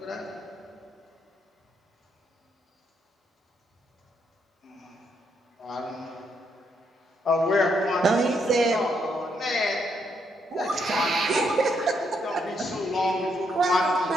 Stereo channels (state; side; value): normal; both; correlation 0.76